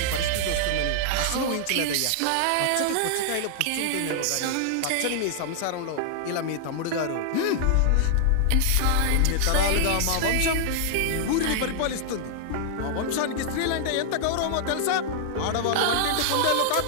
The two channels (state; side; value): different; both; correlation -0.01